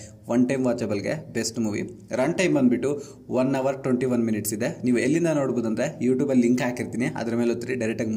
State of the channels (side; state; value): both; identical; correlation 1.00